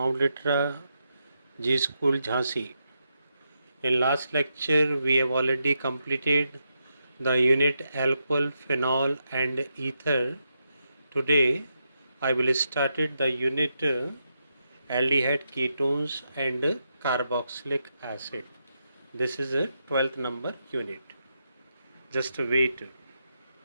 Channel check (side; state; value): both; inverted; correlation -0.84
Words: Litra, G School, Jhansi. In last lecture, we have already completed the unit alcohol, phenol, and ether. Today, I will start the unit aldehyde, ketones, and carboxylic acid. This is a 12th number unit. Just wait.